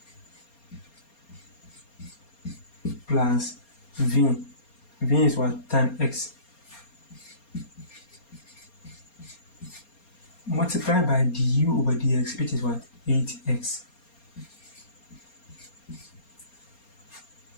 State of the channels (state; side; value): late; right; 4.3 ms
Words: plus v. v is what? Tan x. Multiply by du over dx, which is what? 8x.